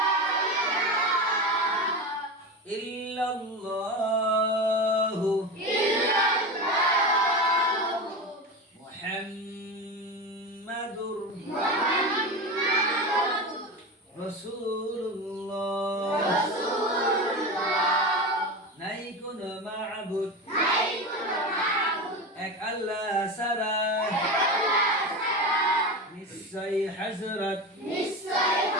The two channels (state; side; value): normal; both; correlation 0.23